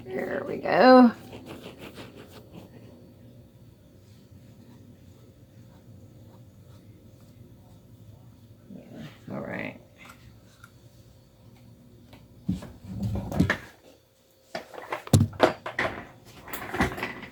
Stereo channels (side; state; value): both; identical; correlation 1.00